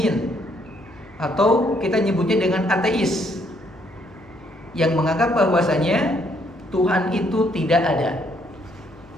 atau kita nyebutnya dengan ateis, yang menganggap bahwasanya Tuhan itu tidak ada.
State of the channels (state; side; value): noise; left; hum, 25 dB below the sound